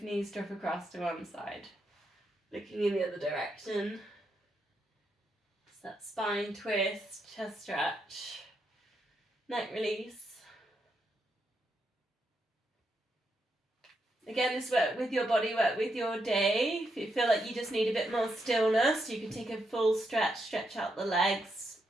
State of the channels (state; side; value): normal; both; correlation 0.81